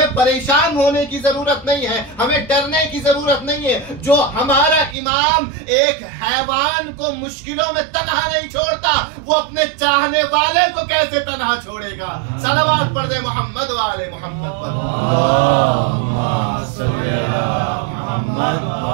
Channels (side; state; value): left; drops out; at 5.0 s